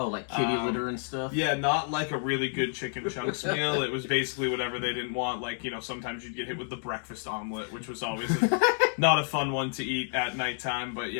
like kitty litter and stuff? Yeah, not like a really good chicken chunks meal. It was basically whatever they didn't want. Sometimes you'd get hit with the breakfast omelet, which was always not a fun one to eat at nighttime. But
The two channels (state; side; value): silent; right; 58 dB below the other